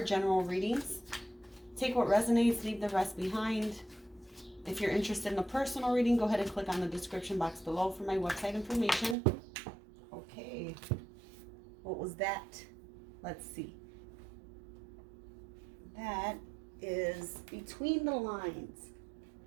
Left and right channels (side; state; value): left; drops out; at 9.2 s